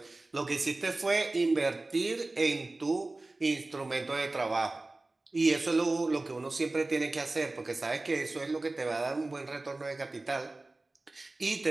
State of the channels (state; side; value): quieter; left; 3.0 dB